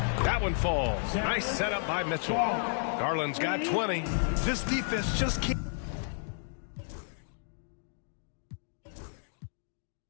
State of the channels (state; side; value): silent; right; digital silence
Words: That one falls. Nice setup by Mitchell. Garland's got 20. This defense just can't.